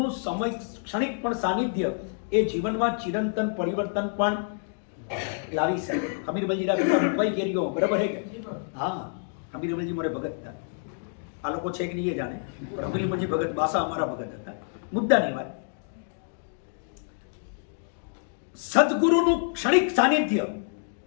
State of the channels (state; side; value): silent; right; digital silence